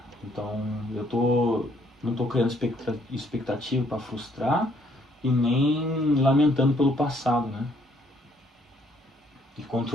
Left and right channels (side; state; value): both; normal; correlation 0.67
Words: Então, não tô criando expectativa para frustrar e nem lamentando pelo passado, né? E